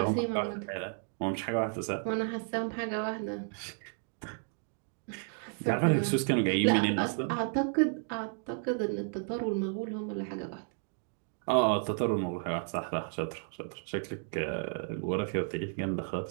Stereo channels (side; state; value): left; silent; 56 dB below the other